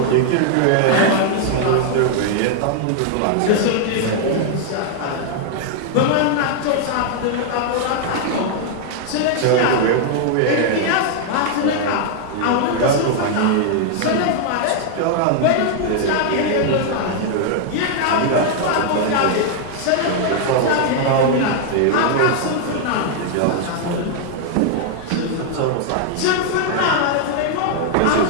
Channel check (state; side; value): different; both; correlation 0.00